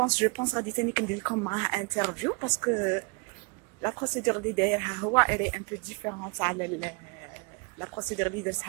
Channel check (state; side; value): quieter; left; 29.7 dB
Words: بونس غادي تاني كندير لكم معاه انترفيو، باسكو لا بروسيدور اللي دايرها هو الي ان بو ديفيرونت على لا بروسيدور اللي